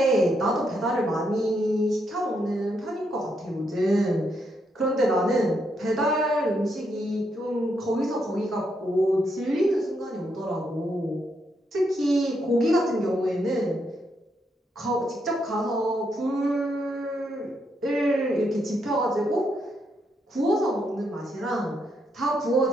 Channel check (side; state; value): both; normal; correlation 0.78